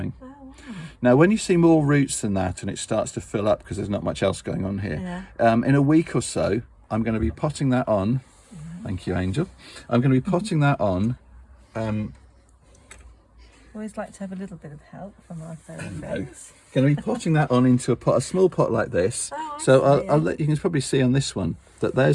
Oh, wow. Now, when you see more roots than that and it starts to fill up because there's not much else going on here, in a week or so, I'm going to be potting that on. Thank you, Angel. I'm going to be potting that on. Always like to have a little bit of help from our friends. Going to be potting that on into a pot, a small pot like this. So I'll let you can probably see on this one that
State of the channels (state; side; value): identical; both; correlation 1.00